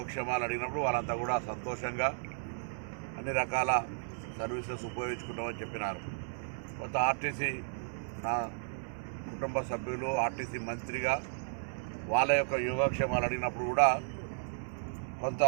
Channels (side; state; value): left; silent; 55 dB below the other